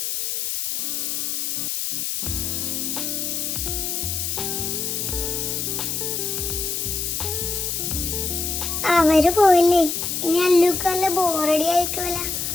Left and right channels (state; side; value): noise; left; hiss, 2 dB below the sound